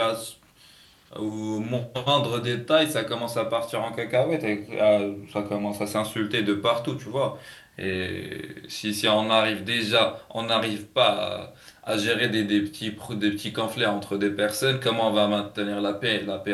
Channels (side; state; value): both; identical; correlation 1.00